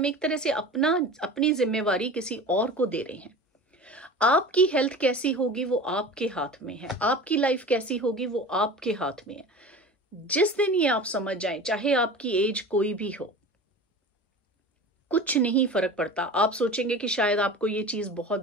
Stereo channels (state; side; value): normal; both; correlation 0.35